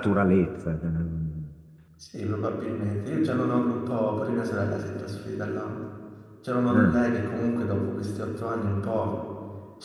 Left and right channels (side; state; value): both; identical; correlation 1.00